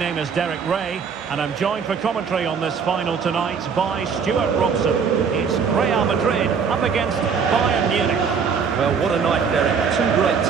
is Derek Ray, and I'm joined for commentary on this final tonight by Stuart Robson. It's Real Madrid up against Bayern Munich. Well, what a night, Derek. Two great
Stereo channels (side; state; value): left; quieter; 6.2 dB